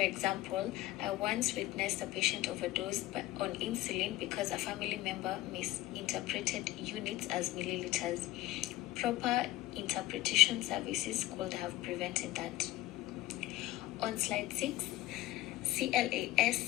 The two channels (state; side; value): quieter; right; 16.7 dB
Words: example, I once witnessed a patient overdose on insulin because a family member misinterpreted units as milliliters. Proper interpretation services could have prevented that. On slide 6,